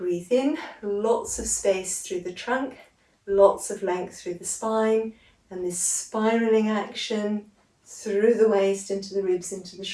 in, lots of space through the trunk, lots of length through the spine, and this spiraling action through the waist, into the ribs, into the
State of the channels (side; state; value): both; identical; correlation 1.00